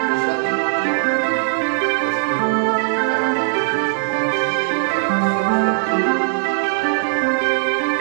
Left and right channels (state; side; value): silent; left; digital silence